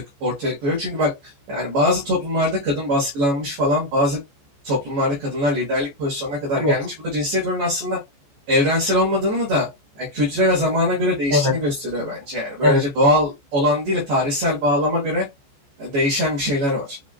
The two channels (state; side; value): late; left; 14 ms